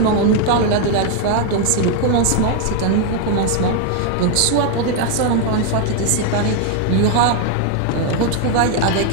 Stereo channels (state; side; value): different; both; correlation 0.01